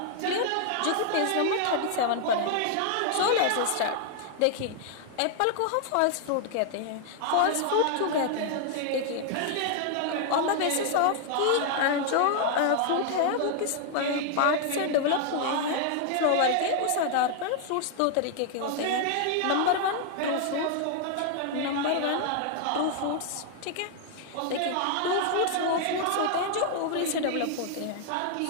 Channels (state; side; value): different; both; correlation 0.00